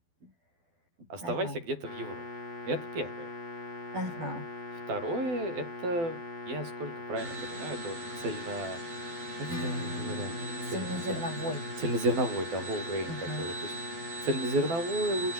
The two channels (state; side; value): late; left; 12 ms